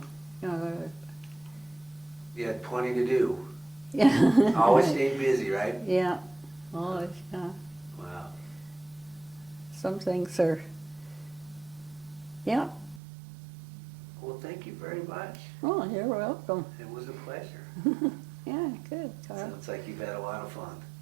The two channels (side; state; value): left; drops out; at 13.0 s